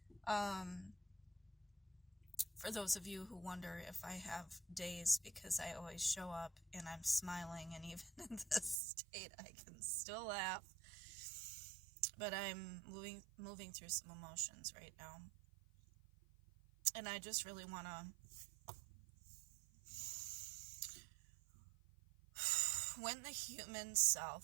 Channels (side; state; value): left; drops out; at 8.8 s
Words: For those of you who wonder if I have days, because I always show up and I'm smiling, and even in this state I can still laugh. But I'm moving through some emotions right now. And I just really wanna when the human